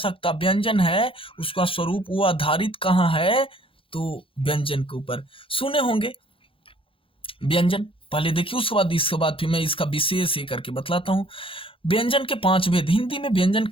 व्यंजन है, उसका स्वरूप वो आधारित कहाँ है, तो व्यंजन के ऊपर। सुने होंगे व्यंजन, पहले देखिए, उसके बाद इसके बाद फिर मैं इसका विशेष ये करके बतलाता हूँ। व्यंजन के 5 भेद, हिंदी में व्यंजन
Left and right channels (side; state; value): right; late; 0.26 ms